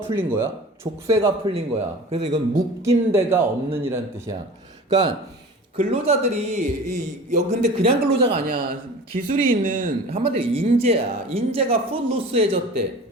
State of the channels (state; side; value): normal; both; correlation 0.39